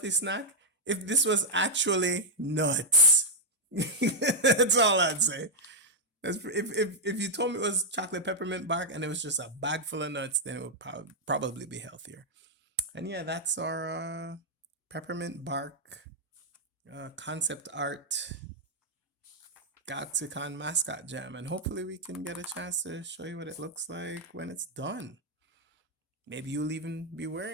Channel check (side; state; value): both; normal; correlation -0.04